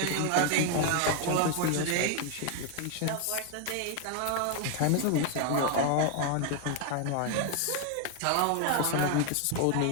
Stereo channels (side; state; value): both; different; correlation 0.01